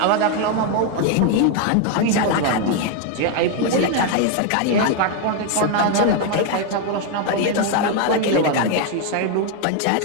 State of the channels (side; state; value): both; different; correlation 0.01